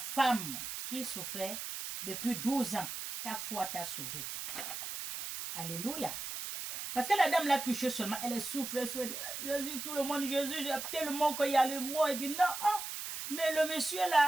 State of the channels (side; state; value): right; noise; hiss, 6 dB below the sound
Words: qui souffrait depuis 12 ans, ta foi t'a sauvé. Alléluia. Parce que la dame l'a touché seulement, elle souffre, elle souffre. Jésus, tout le monde, Jésus, tellement qu'il y a le mot, il dit non, ah, mais le monsieur